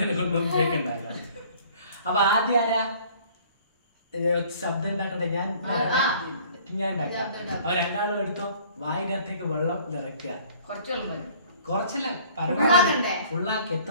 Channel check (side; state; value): both; inverted; correlation -0.54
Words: കൊണ്ടൊന്നും ചോദിക്കണ്ടാക. അപ്പൊ ആദ്യം ആരാ ശബ്ദം ഉണ്ടാക്കണ്ടേ? ഞാൻ ഉണ്ടാക്കാം. അപ്പൊ 2 എടുത്തോ. വായിനകത്തേക്ക് വെള്ളം നിറയ്ക്കുക. കുറച്ചല്ല, പരമാവധി ഫുള്ളാക്കി.